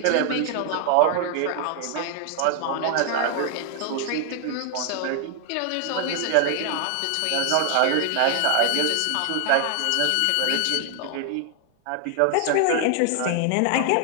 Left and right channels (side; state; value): both; different; correlation 0.00